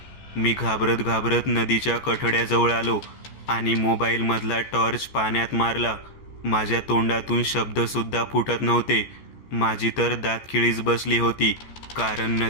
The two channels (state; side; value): late; right; 14 ms